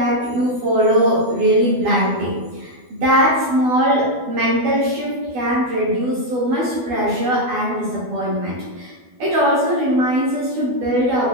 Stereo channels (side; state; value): left; late; 12 ms